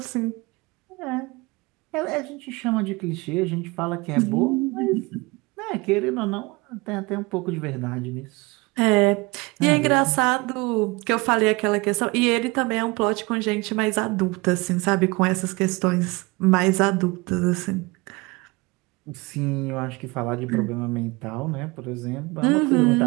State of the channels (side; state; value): left; quieter; 24.7 dB